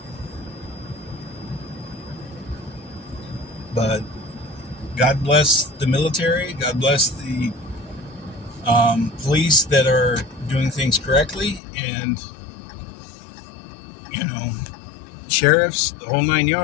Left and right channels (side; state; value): right; drops out; at 11.6 s